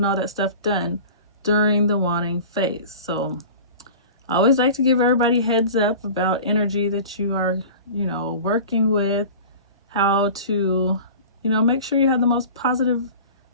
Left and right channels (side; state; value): both; inverted; correlation -0.38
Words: all that stuff done during the wanting phase. So I always like to give everybody heads up about energy that you are, working with, how to, make sure you have the most positive